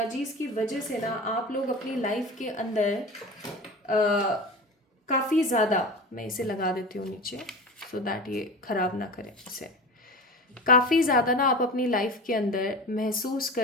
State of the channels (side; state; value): both; normal; correlation 0.31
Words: की वजह से ना आप लोग अपनी लाइफ के अंदर काफ़ी ज़्यादा, मैं इसे लगा देती हूँ नीचे सो दैट ये ख़राब ना करें इसे, काफ़ी ज़्यादा ना आप अपनी लाइफ के अंदर महसूस